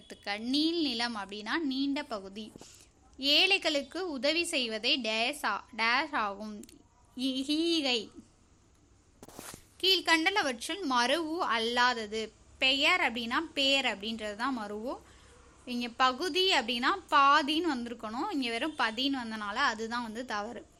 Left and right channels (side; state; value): both; identical; correlation 1.00